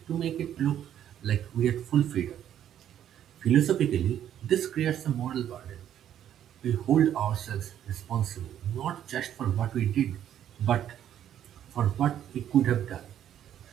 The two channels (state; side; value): quieter; left; 10.5 dB